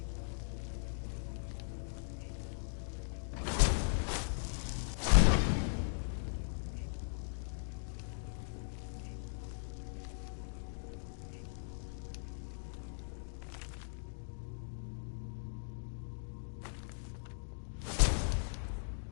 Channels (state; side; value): silent; right; digital silence